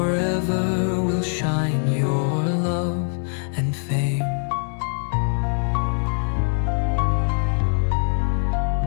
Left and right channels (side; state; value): right; silent; 64 dB below the other